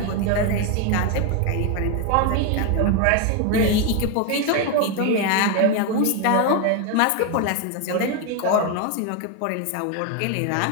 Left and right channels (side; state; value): both; different; correlation 0.01